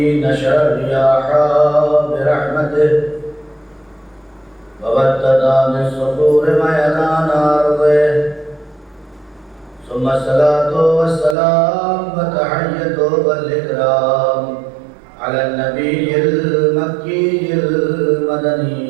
نشر الرياح برحمته وبدد من الصخور ميدان أرضه ثم الصلاة والسلام وتحية والإكرام على النبي المكي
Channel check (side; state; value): left; drops out; at 11.4 s